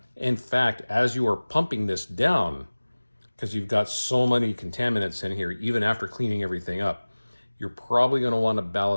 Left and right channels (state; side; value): inverted; both; correlation -1.00